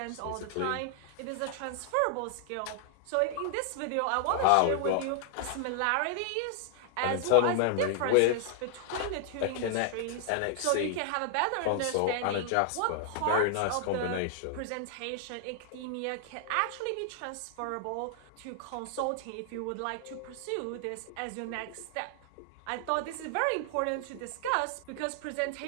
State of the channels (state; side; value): different; both; correlation 0.00